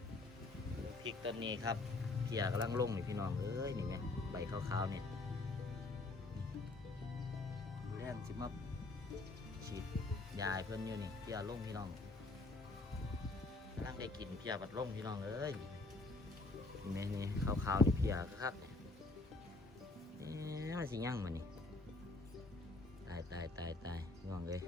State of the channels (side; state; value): right; quieter; 3.2 dB